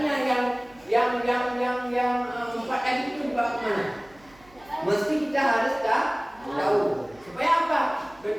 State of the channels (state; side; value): noise; right; hum, 27 dB below the sound